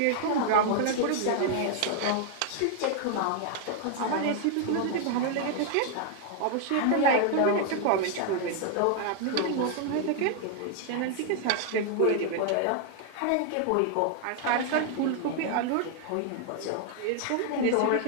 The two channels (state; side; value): different; both; correlation 0.00